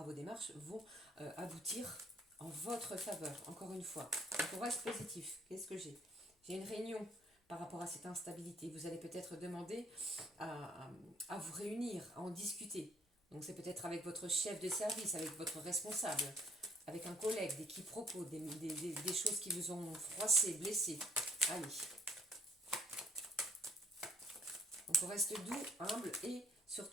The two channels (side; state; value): both; normal; correlation 0.62